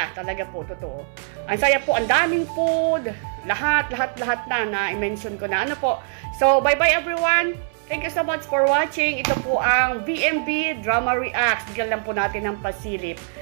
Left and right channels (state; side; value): silent; left; 61 dB below the other